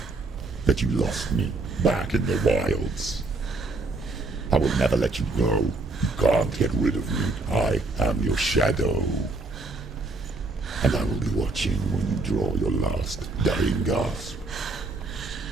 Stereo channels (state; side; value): quieter; left; 3.2 dB